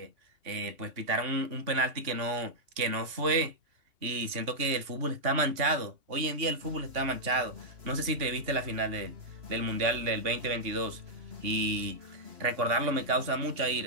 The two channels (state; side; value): late; left; 2.8 ms